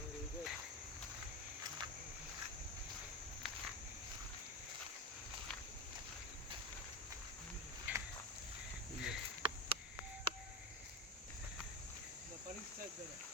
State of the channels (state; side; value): normal; both; correlation 0.20